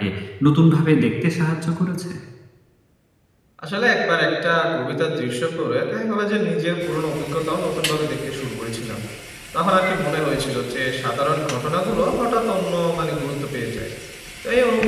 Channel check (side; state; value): both; identical; correlation 1.00